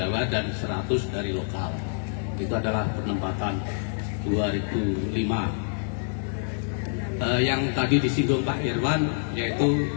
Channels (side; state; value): right; silent; 60 dB below the other